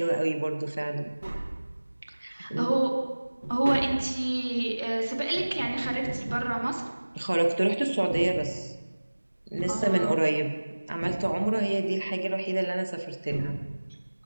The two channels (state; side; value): inverted; both; correlation -1.00